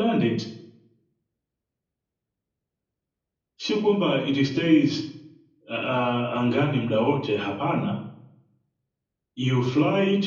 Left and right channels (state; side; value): identical; both; correlation 1.00